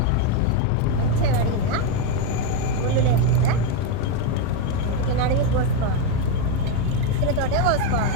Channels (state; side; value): different; both; correlation 0.02